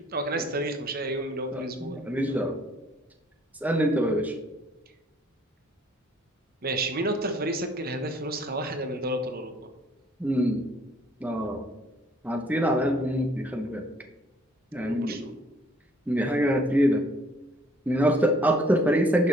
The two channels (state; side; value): normal; both; correlation 0.60